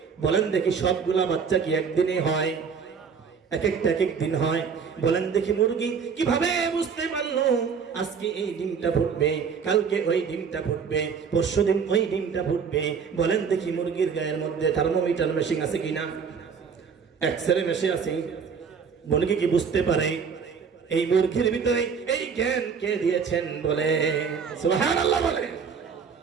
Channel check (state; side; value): quieter; left; 6.2 dB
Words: বলেন দেখি সবগুলা বাচ্চা কি একদিনে হয়? এক এক দিন হয়। বলেন দেখি মুরগি কিভাবে বুঝতে পারলো আজকে এই ডিমটা ফুটবে, কালকে ওই ডিমটা ফুটবে, পরশুদিন ওই ডিমটা ফুটবে? বলেন দেখি মুরগির গায়ের মধ্যে থার্মোমিটার মেশিন আছে কিনা, এক্সরে মেশিন আছে? মুরগি কি বুঝতে পারে? এই মুরগির ভিতরে এই জ্ঞান কে দিয়েছেন? বলে সুবহানাল্লাহ বলে।